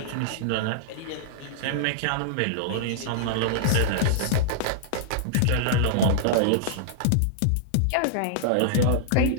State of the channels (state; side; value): different; both; correlation -0.01